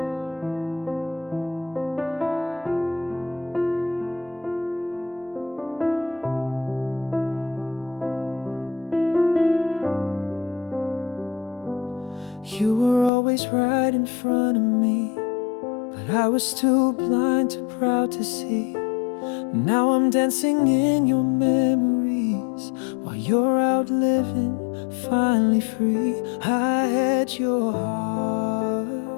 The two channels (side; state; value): right; drops out; at 13.1 s